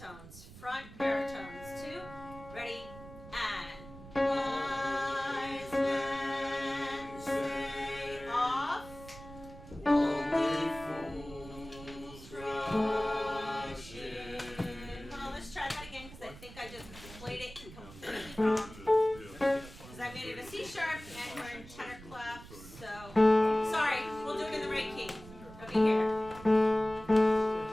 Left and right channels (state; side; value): noise; right; rumble, 17 dB below the sound